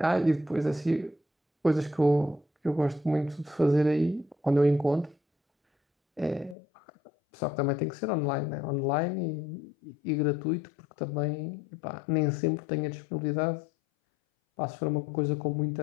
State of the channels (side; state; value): right; drops out; at 6.6 s